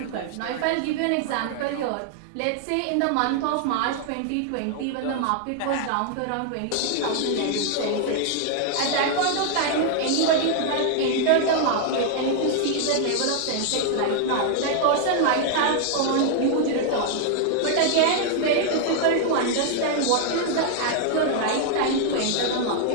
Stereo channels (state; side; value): different; both; correlation 0.00